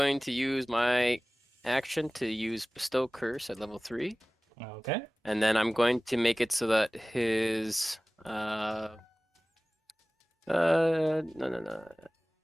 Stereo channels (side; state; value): both; normal; correlation 0.98